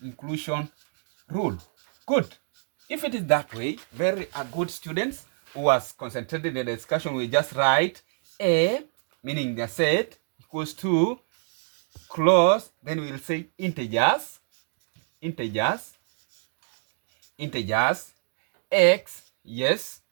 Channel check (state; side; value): silent; left; digital silence